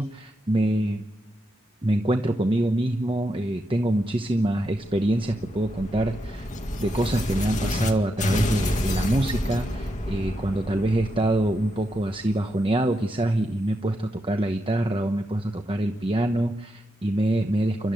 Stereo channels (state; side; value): normal; both; correlation 0.83